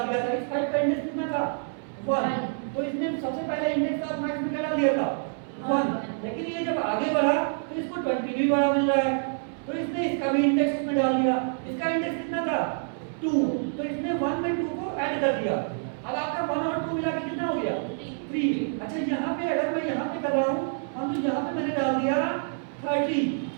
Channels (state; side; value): silent; left; 59 dB below the other